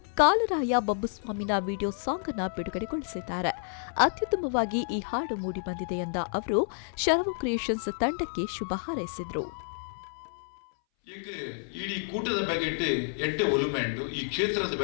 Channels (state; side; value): silent; right; 58 dB below the other